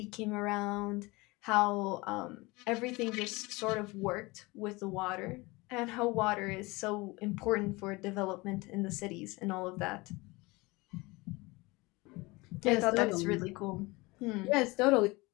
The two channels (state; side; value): quieter; right; 23.5 dB